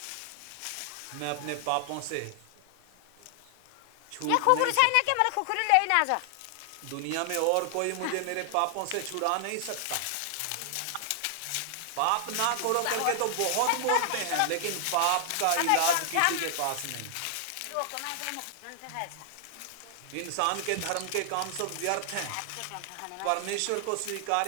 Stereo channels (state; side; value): different; both; correlation 0.00